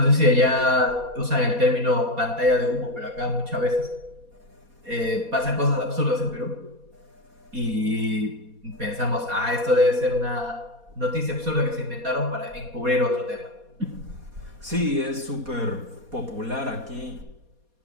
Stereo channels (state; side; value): late; left; 4.2 ms